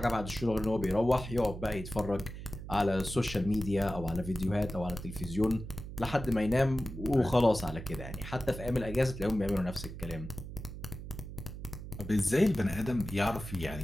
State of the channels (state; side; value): noise; right; hum, 10 dB below the sound